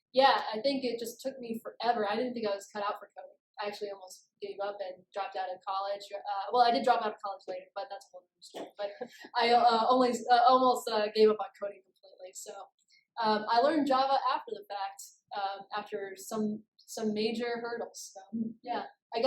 yeah, I think it just took me forever. I didn't think I was cut out for coding. I actually almost gave up and dropped out of college. Well, I did drop out of college later, but that's a whole other story. But I almost gave up on coding completely. So I learned Java after the fact, after some major hurdles. So yeah, I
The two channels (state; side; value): identical; both; correlation 1.00